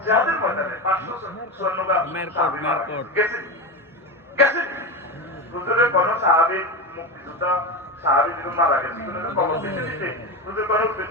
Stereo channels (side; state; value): both; normal; correlation 0.20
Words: যাদের ময়দানে 500 স্বর্ণগা গেছে হুজুরের কোন সাহাবী মুক্তিযোদ্ধা সাহাবী যখন মারা গেছে কোনো খবর দিতে হুজুর কোন